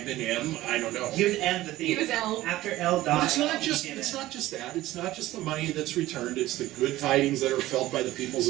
been M. I don't know. He was M the He thief. was L. After L But died. it's not just he came it's in. not just that. It's not just the money that's returned. It's the good tidings that are felt by the peoples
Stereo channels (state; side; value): quieter; left; 16.2 dB